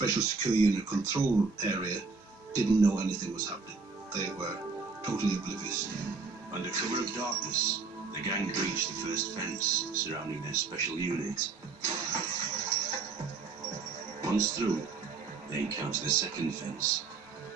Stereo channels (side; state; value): left; quieter; 4.5 dB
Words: Secure Unit control area didn't know anything was happening. They were totally oblivious. Under cover of darkness, the gang breached the first fence surrounding their special unit. Once through, they encounter the second fence.